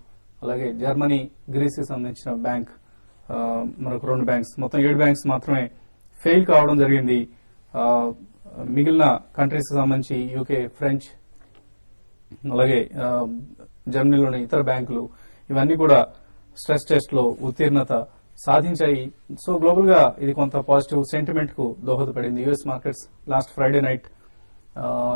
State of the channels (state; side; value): inverted; both; correlation -1.00